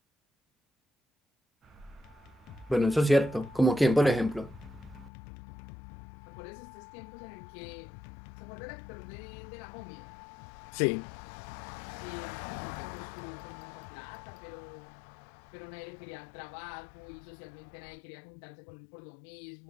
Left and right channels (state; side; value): drops out; right; at 5.1 s